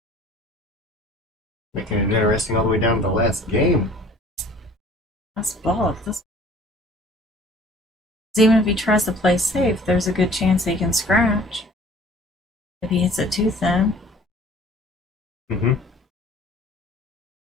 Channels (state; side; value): normal; both; correlation 0.50